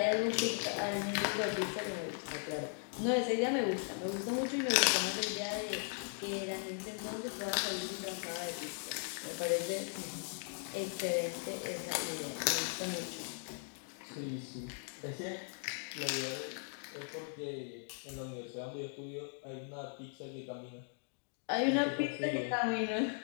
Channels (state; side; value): silent; right; 52 dB below the other